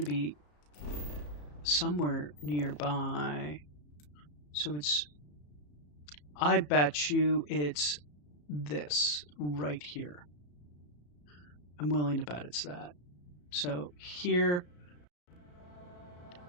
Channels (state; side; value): late; right; 34 ms